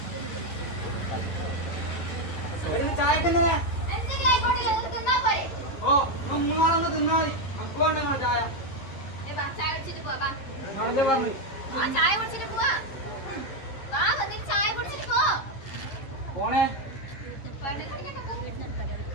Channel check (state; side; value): late; right; 11 ms